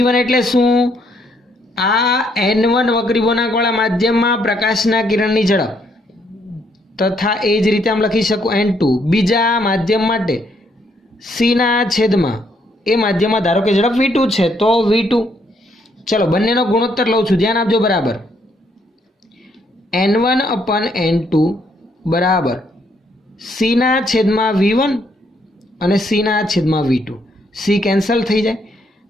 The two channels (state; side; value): normal; both; correlation 0.72